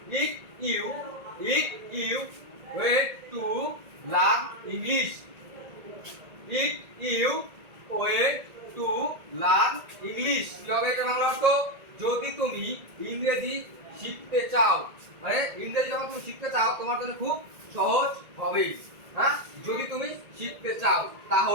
if you wait to learn English, if you wait to learn English, কি হবে এটা বাংলা অর্থ? যদি তুমি ইংরেজি শিখতে চাও, মানে ইংরেজি যখন তুমি শিখতে চাও তোমার জন্য খুব সহজ হবে। হ্যাঁ, যদি তুমি শিখতে চাও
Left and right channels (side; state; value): left; late; 1.8 ms